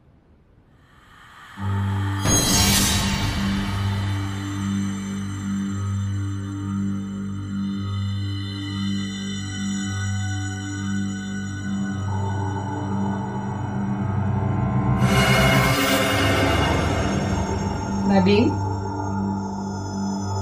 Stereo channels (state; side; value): identical; both; correlation 1.00